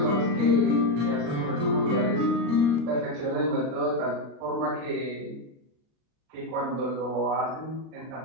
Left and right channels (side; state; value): left; late; 38 ms